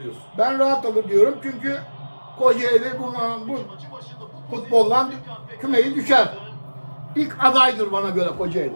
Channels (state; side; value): inverted; both; correlation -1.00